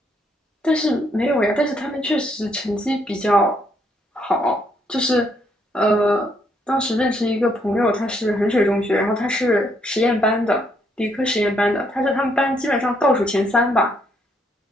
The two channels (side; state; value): both; normal; correlation 0.72